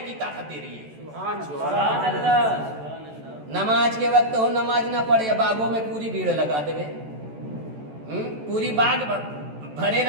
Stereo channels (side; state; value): left; late; 14 ms